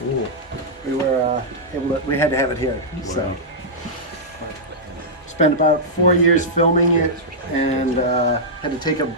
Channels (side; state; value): both; normal; correlation -0.10